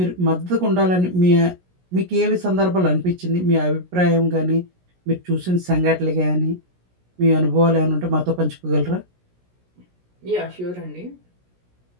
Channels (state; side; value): late; left; 17 ms